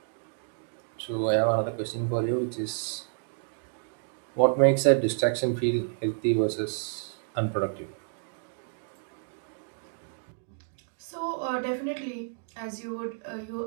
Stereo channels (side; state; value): left; silent; digital silence